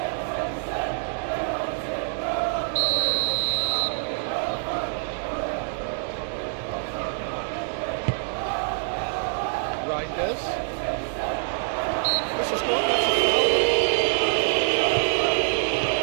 Reinders. This is good, that's a foul.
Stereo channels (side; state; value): left; silent; digital silence